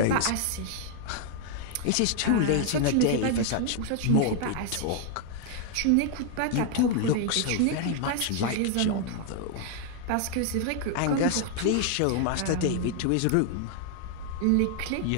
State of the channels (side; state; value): both; different; correlation 0.00